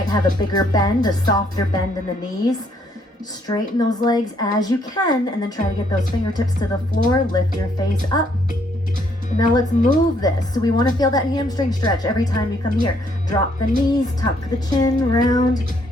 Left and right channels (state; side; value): normal; both; correlation 0.69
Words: have a bigger bend, a softer bend in the knees. Straighten those legs as you can, and then try to get those fingertips to the floor. Lift your face up. And now let's move this. So we want to feel that hamstring stretch every time you come here. Drop the knees, tuck the chin, round,